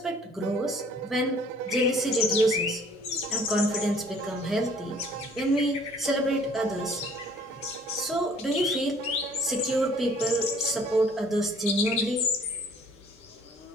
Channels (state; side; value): normal; both; correlation 0.56